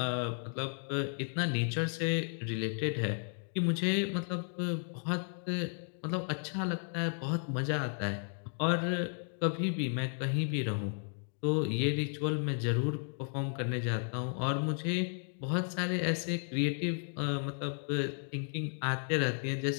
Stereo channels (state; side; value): silent; right; 55 dB below the other